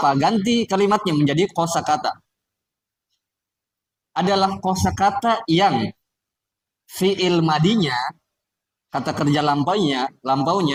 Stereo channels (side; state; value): both; identical; correlation 1.00